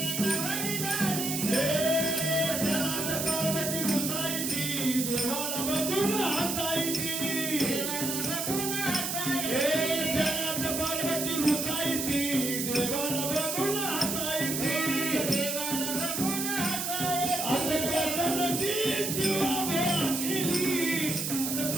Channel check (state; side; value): noise; right; hiss, 2 dB below the sound